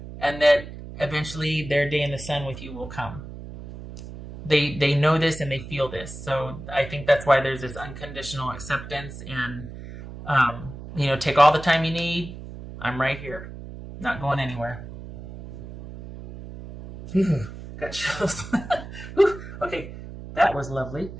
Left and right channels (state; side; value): noise; right; hum, 12 dB below the sound